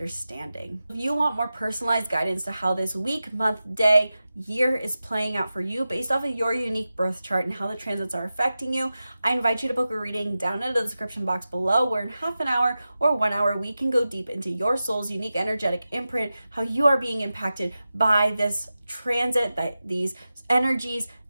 If you want more personalized guidance to how this week, month, day, year is playing out for you based off of your unique birth chart and how the transits are affecting you, I invite you to book a reading down in the description box below, where in half an hour or 1 hour, we can go deep into your soul's unique energetic imprint, how you are being impacted by this transit, these energies,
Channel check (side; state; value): both; inverted; correlation -0.93